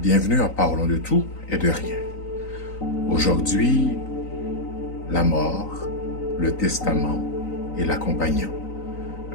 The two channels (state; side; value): late; right; 3.9 ms